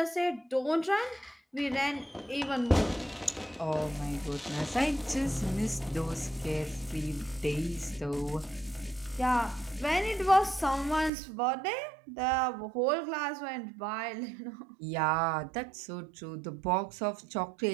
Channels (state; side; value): drops out; left; at 11.1 s